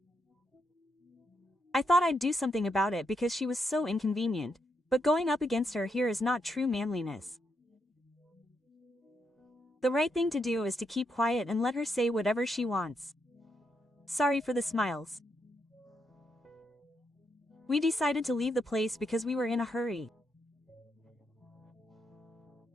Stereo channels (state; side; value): normal; both; correlation 0.80